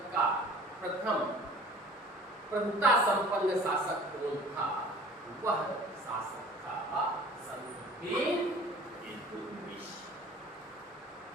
का प्रथम प्रभुता संपन्न शासक कौन था, वह शासक था शमसुद्दीन इल्तुतमिश।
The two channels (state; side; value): normal; both; correlation 0.47